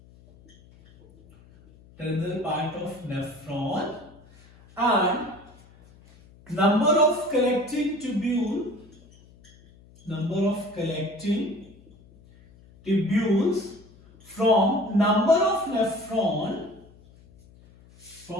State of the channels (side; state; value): left; noise; hum, 25 dB below the sound